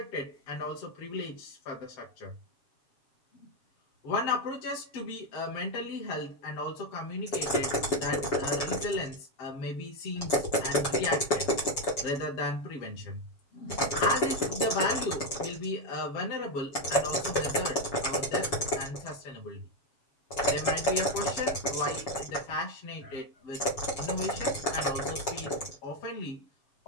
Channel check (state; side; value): late; right; 7.2 ms